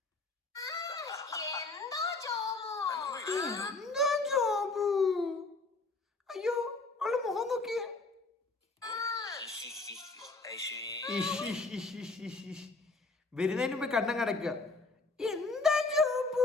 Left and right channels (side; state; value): right; quieter; 3.4 dB